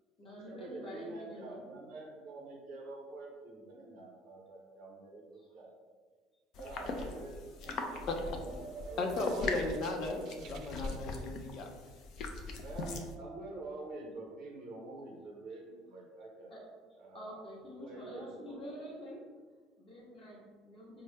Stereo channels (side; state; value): both; normal; correlation 0.55